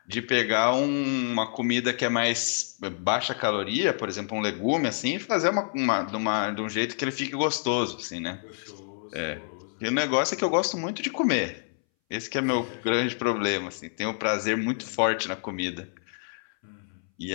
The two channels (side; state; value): right; silent; 60 dB below the other